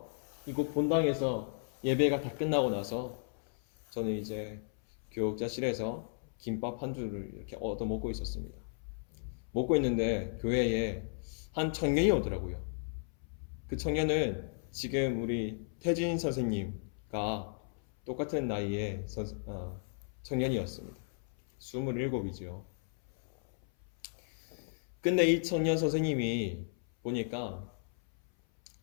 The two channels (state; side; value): silent; right; 55 dB below the other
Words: 이곳 본당에서 예배가 다 끝나고 나서 저는 이제 교육자실에서 김밥 한 줄을 이렇게 얻어 먹고 있었습니다. 먹고 있는데 교회에 한 청년이 오더라고요. 그 청년은 지금 우리 태진 선생님과 똑같은 나이의 청년이었습니다. 27이죠. 근데 이 청년 선생님이 보니까